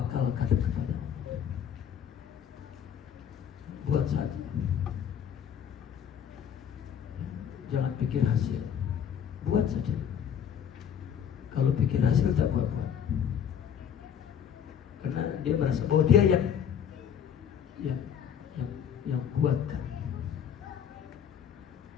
kepada Allah. Buat saja. Jangan pikir hasil. Buat saja. Kalau pikir hasil tak buat. Karena dia merasa bahwa dia yang buatkan.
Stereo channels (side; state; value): right; quieter; 8.4 dB